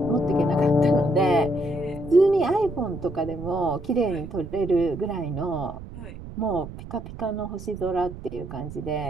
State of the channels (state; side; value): noise; right; rumble, 12 dB below the sound